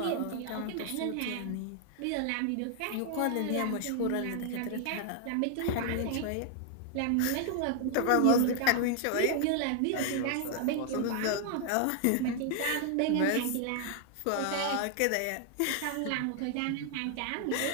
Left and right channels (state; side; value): different; both; correlation 0.00